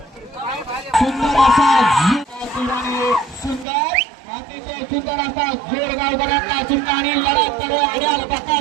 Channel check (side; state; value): left; drops out; at 3.7 s